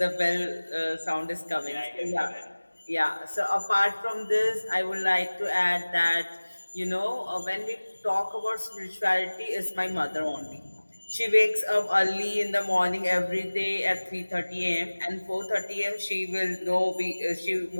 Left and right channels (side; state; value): both; inverted; correlation -1.00